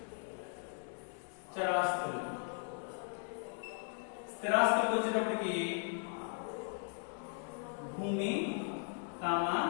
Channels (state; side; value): silent; right; 53 dB below the other